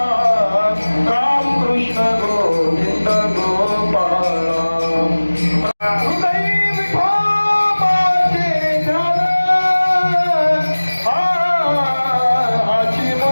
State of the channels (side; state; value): both; inverted; correlation -1.00